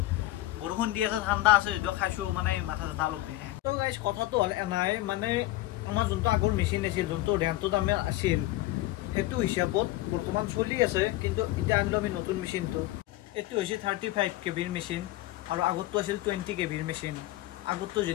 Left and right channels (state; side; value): quieter; right; 17.0 dB